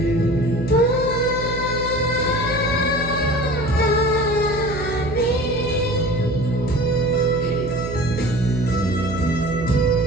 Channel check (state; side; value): noise; right; hum, 7 dB below the sound